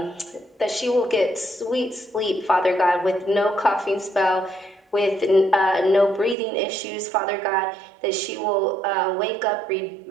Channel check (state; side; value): drops out; left; at 6.4 s